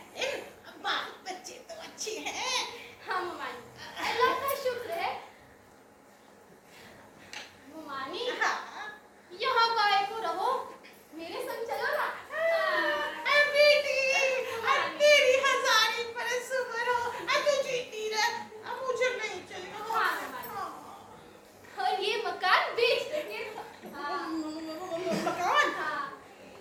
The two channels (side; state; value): both; identical; correlation 1.00